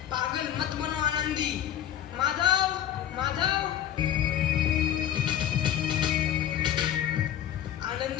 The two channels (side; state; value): right; quieter; 10.6 dB